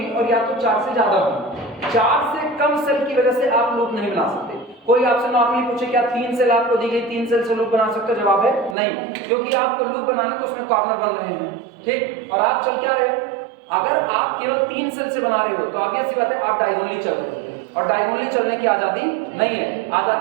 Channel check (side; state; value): left; drops out; at 8.8 s